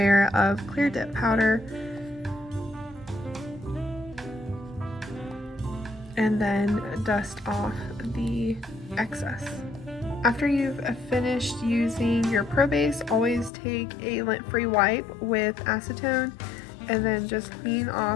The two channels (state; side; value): drops out; right; at 13.5 s